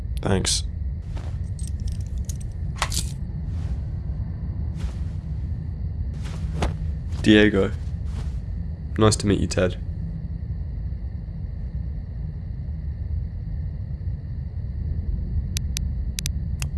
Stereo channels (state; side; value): identical; both; correlation 1.00